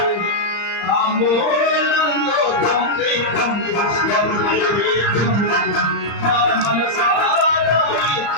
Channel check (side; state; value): right; late; 35 ms